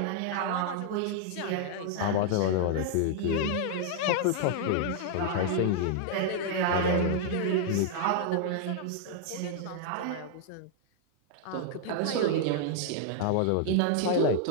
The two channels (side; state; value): both; different; correlation -0.01